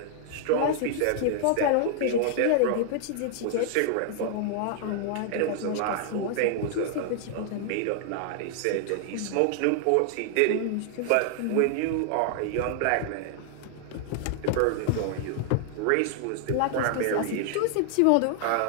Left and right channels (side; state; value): both; different; correlation 0.00